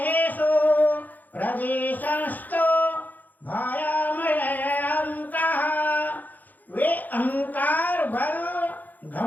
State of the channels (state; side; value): late; right; 0.083 ms